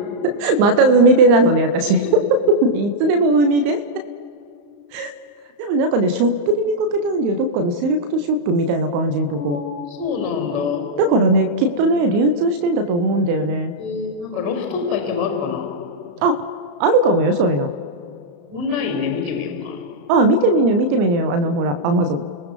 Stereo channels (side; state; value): left; late; 35 ms